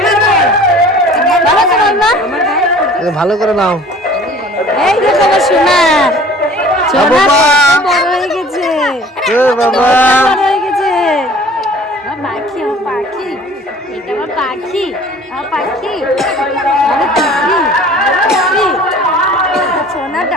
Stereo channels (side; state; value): both; normal; correlation 0.48